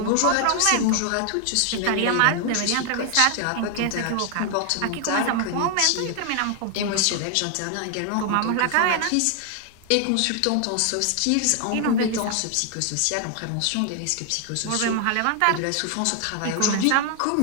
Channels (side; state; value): both; different; correlation 0.00